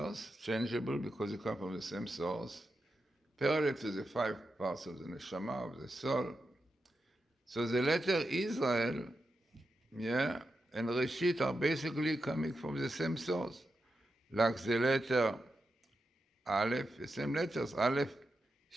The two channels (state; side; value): normal; both; correlation 0.88